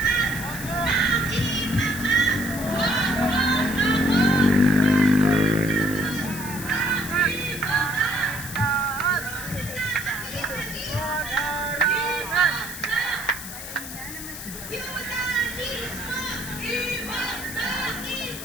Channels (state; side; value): noise; left; hiss, 10 dB below the sound